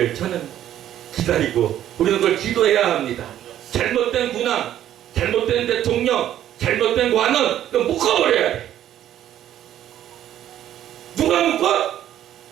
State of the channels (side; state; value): left; quieter; 11.6 dB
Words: 저는 기다리고 우리는 그걸 기도해야 합니다. 잘못된 군왕, 잘못된 대통령, 잘못된 관원, 그거 묶어버려야 돼. 누가 묶어?